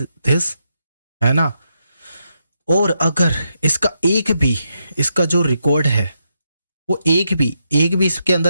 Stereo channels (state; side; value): inverted; both; correlation -0.82